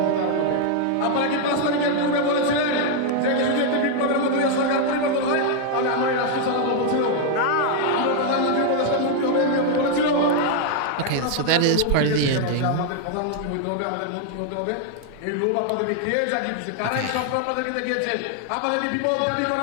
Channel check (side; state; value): both; different; correlation 0.00